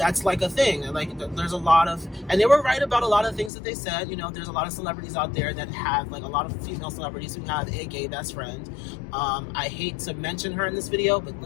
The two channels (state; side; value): drops out; right; at 3.5 s